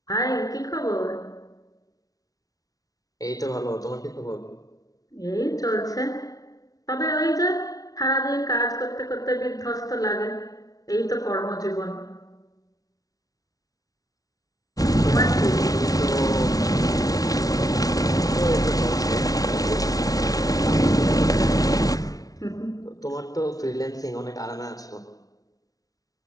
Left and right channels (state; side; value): late; right; 0.18 ms